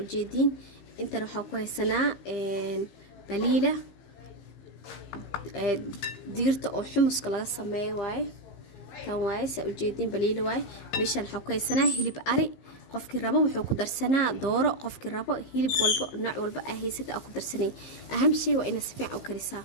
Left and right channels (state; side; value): late; right; 15 ms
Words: jeedin inta waxa ku haysanaa baliila digirta oo xumuska laga sameeyo waaye tan waaye saa u jeedin baliila waaye meeshan waxa ku haysanaa hilib ari qofkii rabo wuxuu ku darsanaa dooro qofkii rabo hilib walba nooc walba ahaysata ku darsanay aham shay waa in si fiican u karisaa